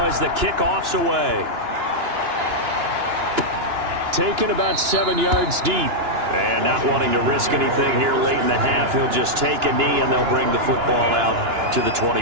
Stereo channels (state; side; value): late; left; 2.9 ms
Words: as the kickoff's away. Taken about 7 yards deep. And not wanting to risk anything here late in the half, he'll just take a knee and they'll bring the football out to the